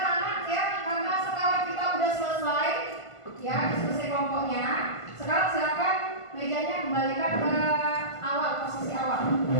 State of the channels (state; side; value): late; right; 1.5 ms